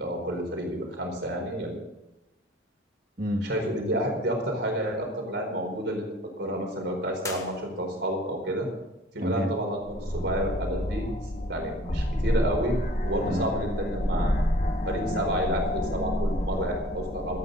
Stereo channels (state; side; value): normal; both; correlation 0.48